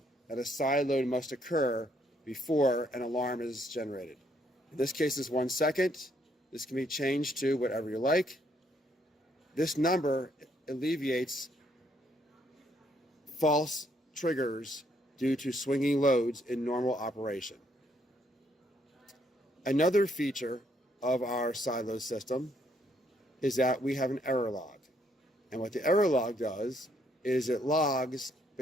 that a side load must occur before an alarm is generated. In this case, it's 1 second. This can be changed to whatever you like. This number alleviates false triggers due to swinging loads in normal operation. Another feature of our side load system is that we have an error log. And what the error log does is it logs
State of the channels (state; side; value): normal; both; correlation 0.71